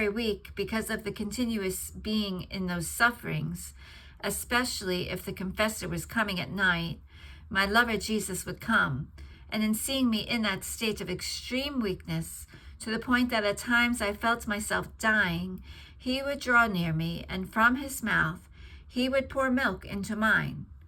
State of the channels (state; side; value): identical; both; correlation 1.00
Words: weak because of the continuous being in those sufferings, especially if the confessor was coming at night, my lover Jesus would come, and in seeing me in that state of extreme weakness, to the point that at times I felt myself dying, he would draw near me, and from his mouth he would pour milk into mine,